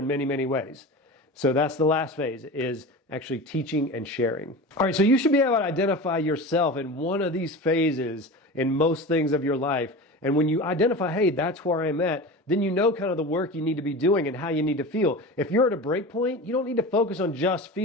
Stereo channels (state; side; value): normal; both; correlation 0.31